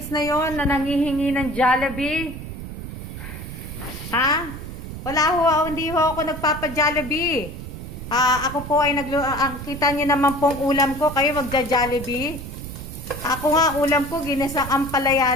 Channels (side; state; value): right; noise; rumble, 9 dB below the sound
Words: na yon na nangihingi ng Jollibee? Wala hindi ako nagpapa-Jollibee. Ako po ay kita niyo naman pong ulam ko, kayo magja-Jollibee. Ako nga, ulam ko, ginisang ampalaya